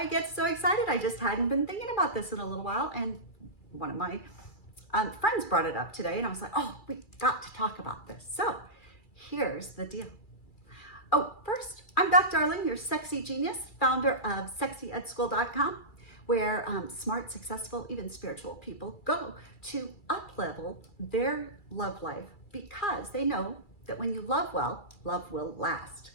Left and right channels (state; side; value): late; right; 2.3 ms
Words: get so excited. I just hadn't been thinking about this in a little while, and one of my friends brought it up today, and I was like, oh, we got to talk about this. So here's the deal. Oh, first, I'm Beth Darling, your sexy genius, founder of sexyedschool.com, where smart, successful, even spiritual people go to up-level their love life because they know that when you love well, love will last.